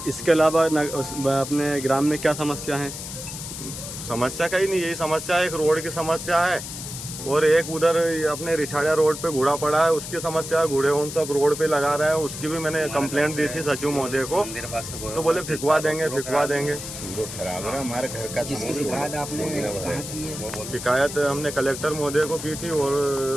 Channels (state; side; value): noise; left; hiss, 9 dB below the sound